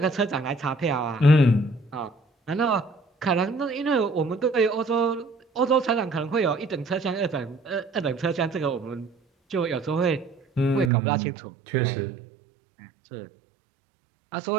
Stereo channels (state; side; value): drops out; left; at 10.9 s